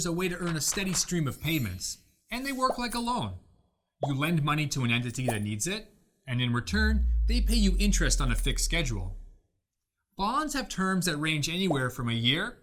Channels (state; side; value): identical; both; correlation 1.00